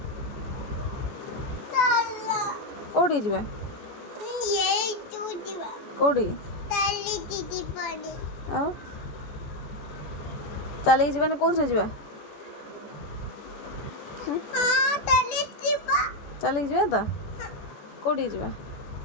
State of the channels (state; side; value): late; right; 14 ms